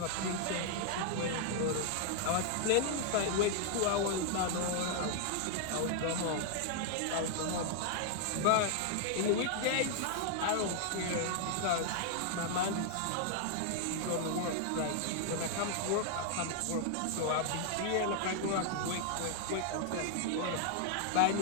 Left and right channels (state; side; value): different; both; correlation 0.00